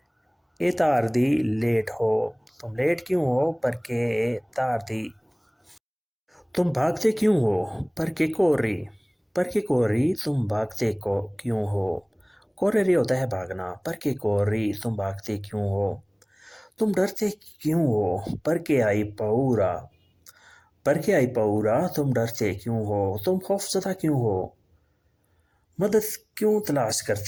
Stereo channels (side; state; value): both; identical; correlation 1.00